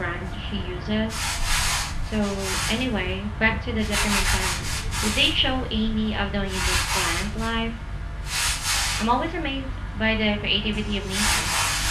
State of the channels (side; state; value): both; identical; correlation 1.00